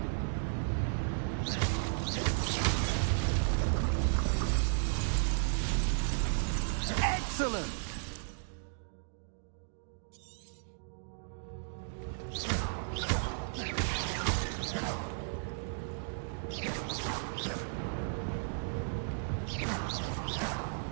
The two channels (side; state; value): left; silent; digital silence